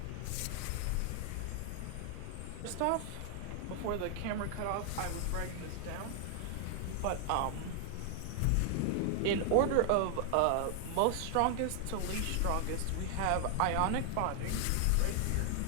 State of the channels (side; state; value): both; different; correlation 0.00